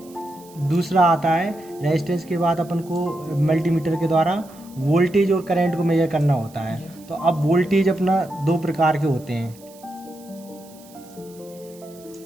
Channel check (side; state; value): right; noise; hiss, 24 dB below the sound